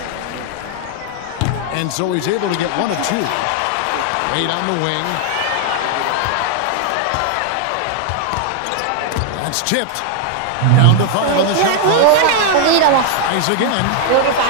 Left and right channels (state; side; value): different; both; correlation 0.00